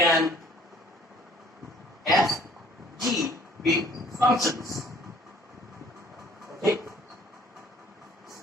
f, g be functions. Okay?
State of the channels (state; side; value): normal; both; correlation 0.55